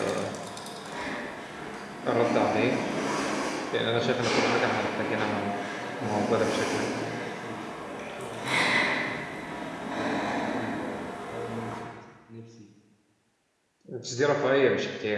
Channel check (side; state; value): both; identical; correlation 1.00